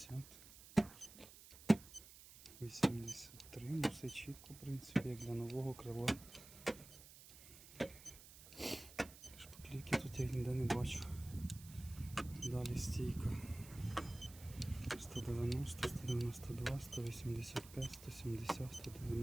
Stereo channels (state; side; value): noise; right; hiss, 18 dB below the sound